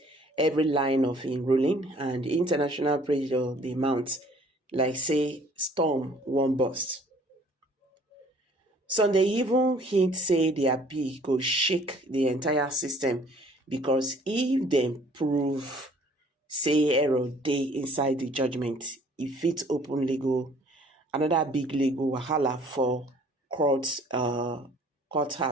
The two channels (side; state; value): both; normal; correlation 0.56